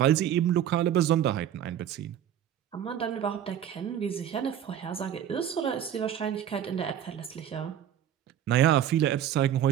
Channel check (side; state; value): left; quieter; 10.3 dB